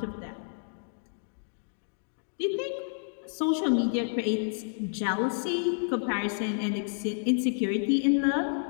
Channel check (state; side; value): silent; right; digital silence